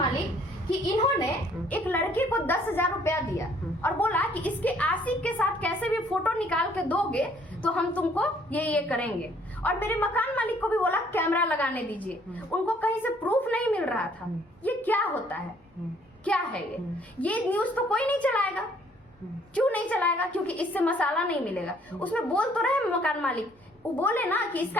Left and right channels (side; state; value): both; normal; correlation 0.62